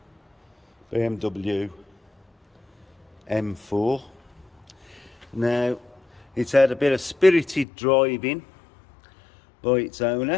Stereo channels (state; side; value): drops out; right; at 7.7 s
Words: BMW M4. Now, it's had a bit of spirited driving by its